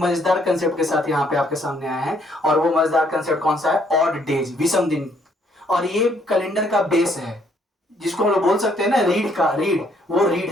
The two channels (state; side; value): normal; both; correlation 0.67